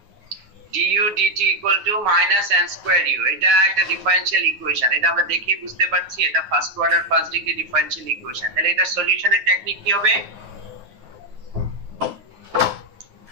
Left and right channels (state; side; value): late; left; 9.4 ms